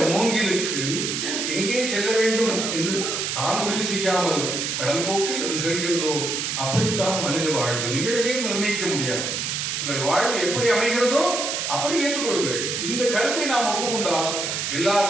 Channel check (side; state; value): right; noise; hiss, 2 dB below the sound